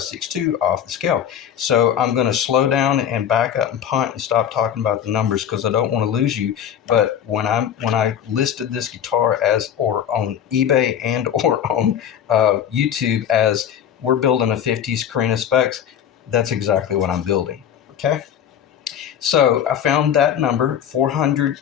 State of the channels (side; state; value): right; quieter; 9.4 dB